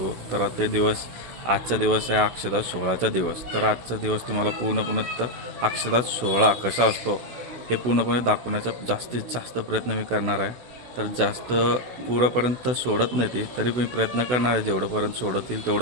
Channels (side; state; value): left; late; 16 ms